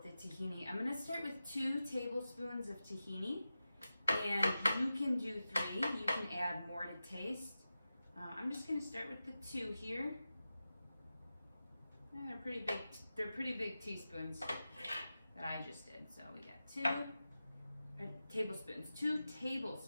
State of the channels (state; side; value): inverted; both; correlation -0.93